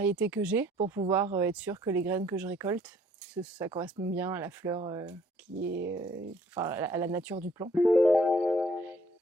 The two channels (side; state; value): both; normal; correlation 0.61